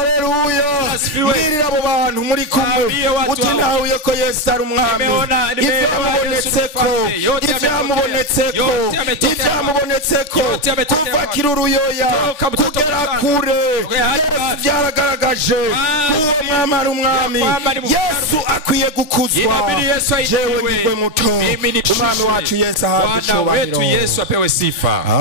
Mbwirire abo bantu muri kumwe. Uti ntahuye ko Yesu ari umwami. Ivyamubonetseko kuva kiruruyoya kugera kure Yesu vyaragaragaje uwo mwami ari umwami. Yesu akwiye gukuzwa. Jewe nigwe muto. Umwami wacu Yesu ahabwe icubahiro. Yesu apewe sifa.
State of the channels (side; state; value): right; late; 3.3 ms